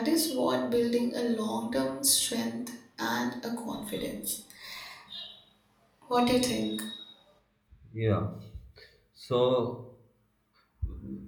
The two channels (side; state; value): both; identical; correlation 1.00